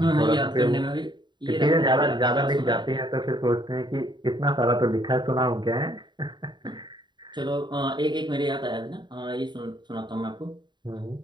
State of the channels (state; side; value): late; left; 0.22 ms